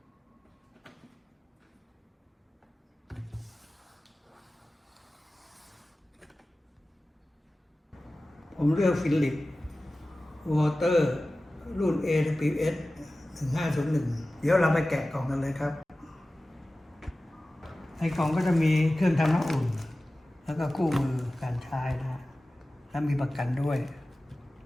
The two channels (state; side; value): normal; both; correlation 0.96